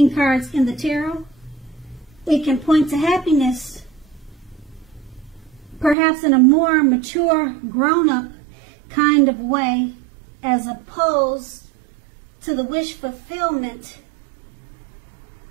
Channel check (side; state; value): left; drops out; at 6.0 s